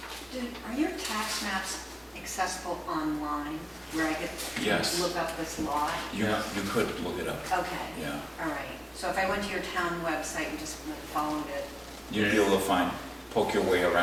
Are your tax maps accessible online, where I could Yes. look up this lot? You could look it up, Okay, yeah. all right. So if I went to your town website and just followed it, You'd be able to poke your way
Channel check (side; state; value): both; identical; correlation 1.00